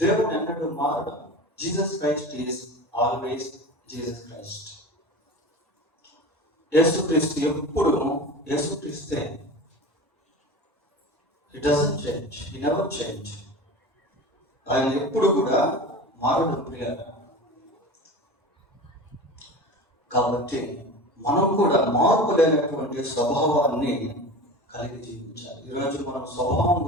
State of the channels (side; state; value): both; normal; correlation 0.32